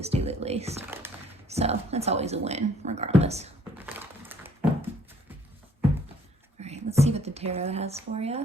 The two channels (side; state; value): both; normal; correlation 0.61